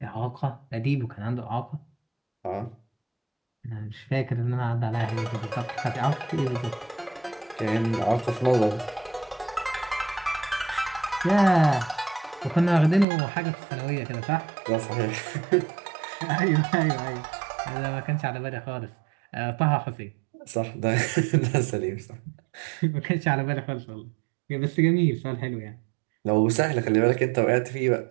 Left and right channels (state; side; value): drops out; left; at 13.1 s